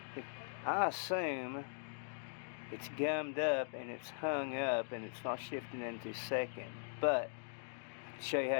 I assume it's gummed up and it's hung up and it's not shifting into second, but show you how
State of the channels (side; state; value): right; silent; digital silence